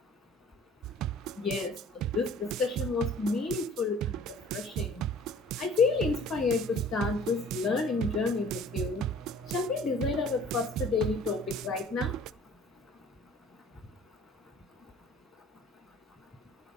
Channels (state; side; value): normal; both; correlation 0.50